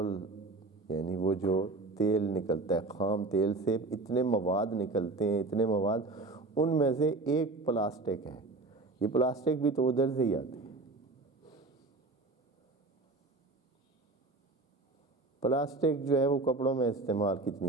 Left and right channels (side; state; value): left; quieter; 3.3 dB